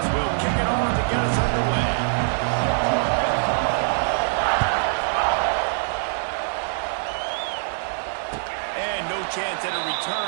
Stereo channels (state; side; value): silent; left; digital silence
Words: will kick it off to get us underway. And no chance at a